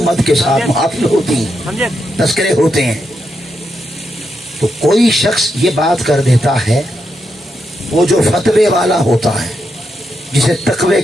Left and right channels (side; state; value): both; normal; correlation 0.83